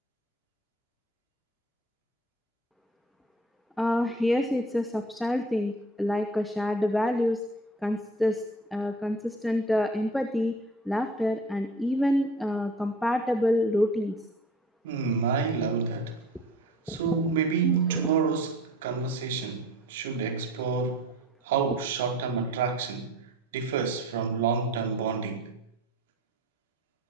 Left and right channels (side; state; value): both; normal; correlation 0.45